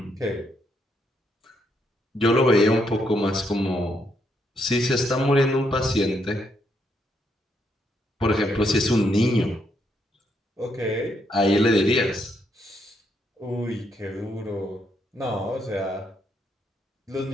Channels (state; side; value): normal; both; correlation 0.76